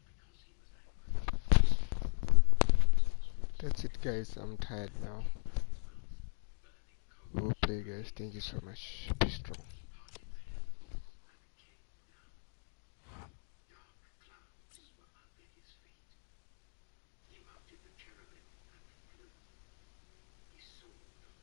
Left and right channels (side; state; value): right; silent; 52 dB below the other